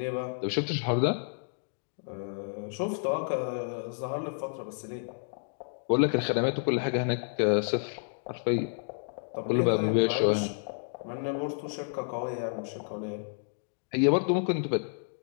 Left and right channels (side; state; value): right; silent; digital silence